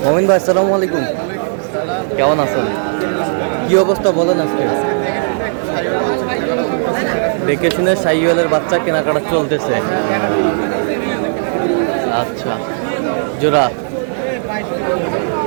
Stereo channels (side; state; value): left; silent; digital silence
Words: মমিন ভাই আসসালামু আলাইকুম, কেমন আছেন? কি অবস্থা বলেন আজকে? দেখে শুনে শাহিওয়ালের বাচ্চা কেনাকাটা চলতেছে। আচ্ছা, জোড়া